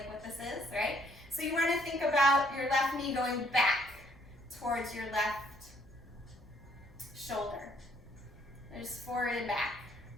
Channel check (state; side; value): normal; both; correlation 0.65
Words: what this is, right? So you want to think about your left knee going back towards your left shoulder. Just forward and back.